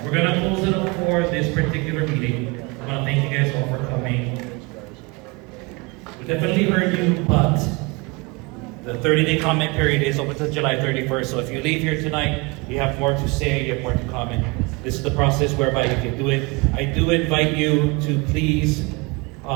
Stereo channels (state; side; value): quieter; left; 27.0 dB